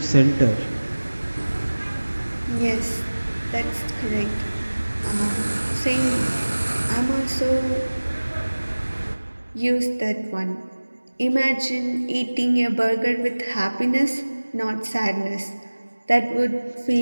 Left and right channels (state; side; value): inverted; both; correlation -1.00